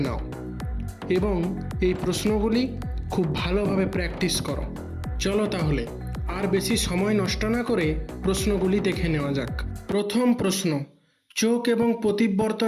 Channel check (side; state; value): both; identical; correlation 1.00